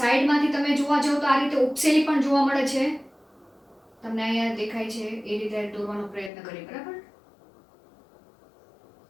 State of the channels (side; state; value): right; drops out; at 6.3 s